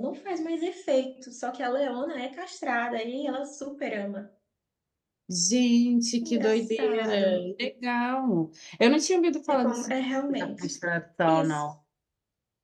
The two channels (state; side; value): identical; both; correlation 1.00